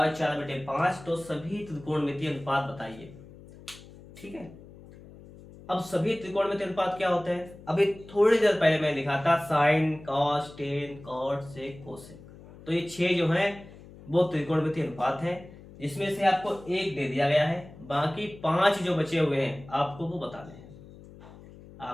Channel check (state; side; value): noise; left; hum, 19 dB below the sound